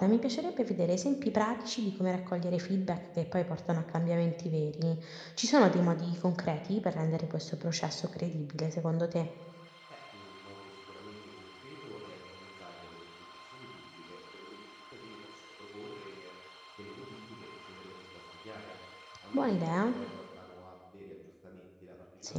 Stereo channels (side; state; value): both; identical; correlation 1.00